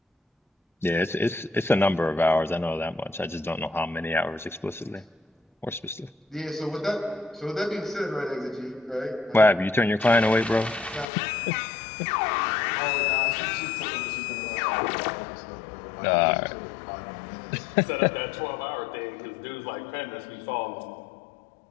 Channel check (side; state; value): right; drops out; at 11.1 s